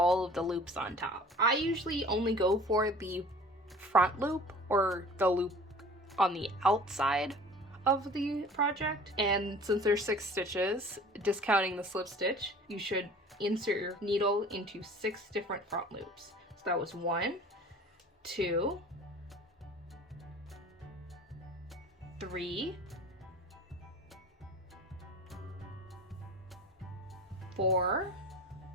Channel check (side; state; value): both; normal; correlation 0.45